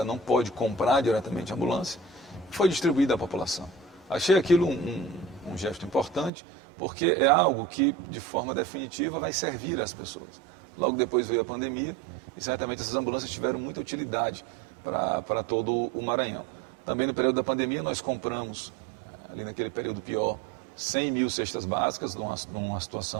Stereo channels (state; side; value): drops out; left; at 6.3 s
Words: não pode comprar diretamente a ambulância, e foi distribuída à população. Achei aquilo um gesto importante, porque é algo que, de forma definitiva, vai servir às pessoas. Logo depois veio a pandemia, e certamente essas ambulâncias tiveram muita utilidade para todo o Maranhão. Também no período da pandemia nós compramos, ali naquele período pior, 100 mil cestas básicas, numa